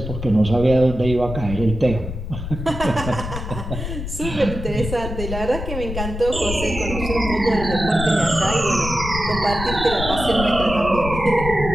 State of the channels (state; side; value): noise; left; rumble, 7 dB below the sound